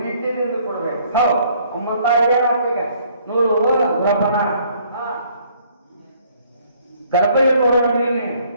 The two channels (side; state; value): both; inverted; correlation -0.62